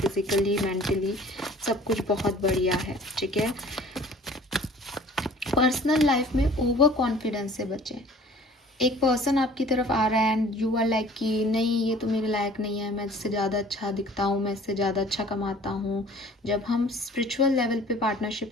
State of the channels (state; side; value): normal; both; correlation 0.50